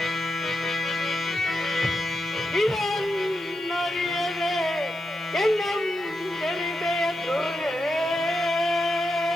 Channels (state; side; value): noise; right; hiss, 26 dB below the sound